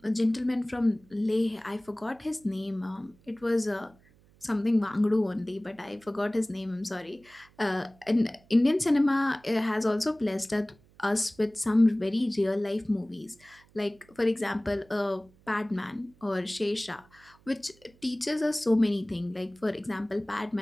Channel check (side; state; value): right; noise; hum, 29 dB below the sound